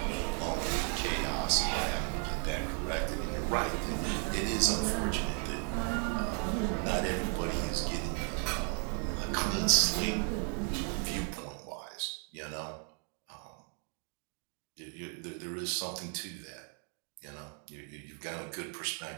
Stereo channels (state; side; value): quieter; left; 37.0 dB